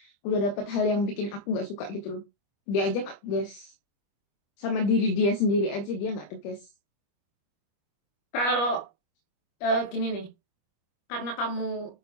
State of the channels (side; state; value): right; late; 25 ms